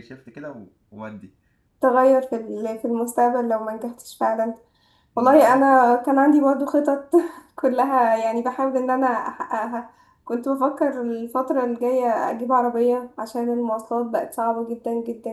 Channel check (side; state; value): both; identical; correlation 1.00